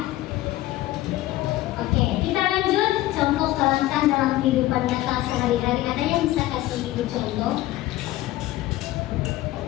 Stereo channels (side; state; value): right; quieter; 16.3 dB